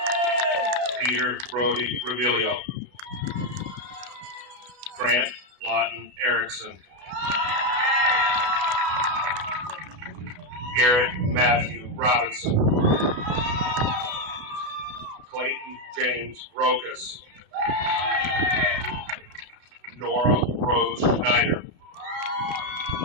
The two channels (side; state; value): left; late; 32 ms